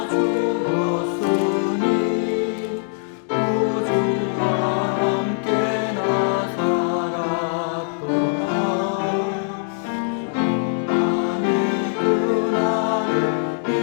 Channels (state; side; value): silent; right; digital silence